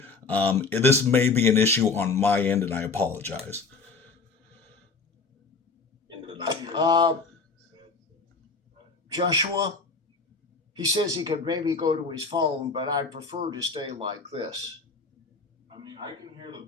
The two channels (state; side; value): quieter; right; 4.3 dB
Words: This may be an issue on my end, and I apologize. Uh, Joshua, he says he could maybe go to his phone, but I prefer to stay like this. I can hear the